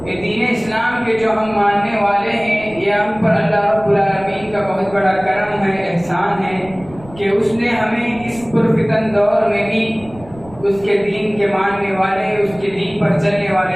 یہ دین اسلام کے جو ہم ماننے والے ہیں، یہ ہم پر اللہ رب العالمین کا بہت بڑا کرم ہے، احسان ہے کہ اس نے ہمیں اس پرفتن دور میں بھی اس کے دین کے ماننے والے، اس کے دین پر چلنے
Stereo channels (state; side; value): noise; right; rumble, 20 dB below the sound